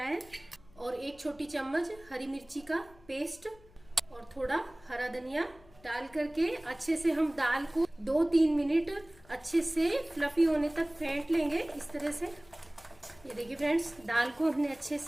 और 1 छोटी चम्मच हरी मिर्ची का पेस्ट और थोड़ा हरा धनिया डाल करके अच्छे से हम दाल को 2-3 मिनट अच्छे से फ्लफी होने तक फेंट लेंगे इस तरह से। ये देखिए फ्रेंड्स, दाल को हमने अच्छे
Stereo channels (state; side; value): noise; left; hum, 26 dB below the sound